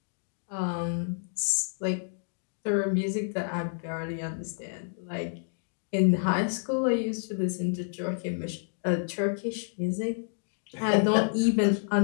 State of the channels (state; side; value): silent; right; digital silence